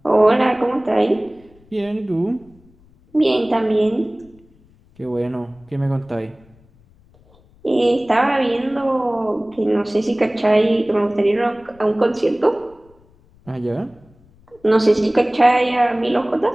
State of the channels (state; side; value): noise; left; rumble, 29 dB below the sound